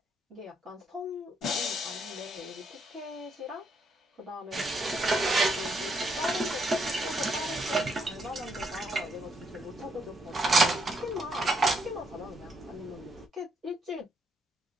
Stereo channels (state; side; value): normal; both; correlation 0.75